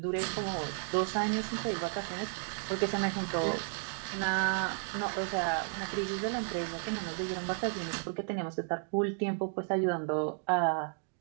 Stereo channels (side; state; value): left; silent; 56 dB below the other